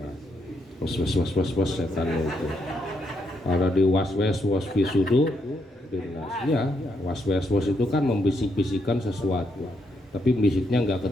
was setan itu. Kalau di waswas wasfisudu dinas, ya waswas itu kan membisik-bisikkan sesuatu, tapi bisiknya nggak ke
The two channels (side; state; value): both; normal; correlation 0.77